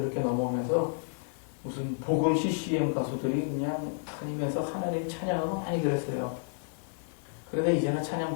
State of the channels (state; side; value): silent; right; 57 dB below the other